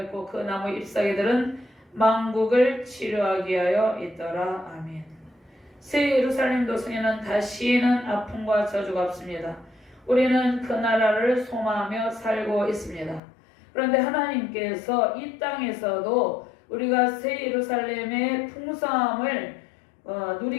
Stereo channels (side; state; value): right; drops out; at 13.2 s